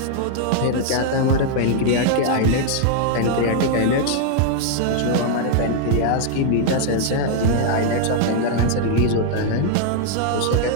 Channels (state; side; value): different; both; correlation 0.00